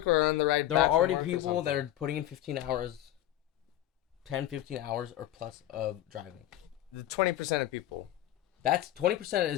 or on the ride. There are already people that are putting in 15 hours, 10, 15 hours or plus of driving. The 20% of people. That's 20%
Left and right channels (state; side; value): quieter; right; 13.2 dB